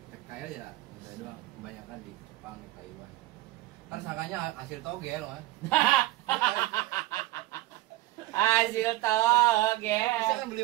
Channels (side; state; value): left; quieter; 17.5 dB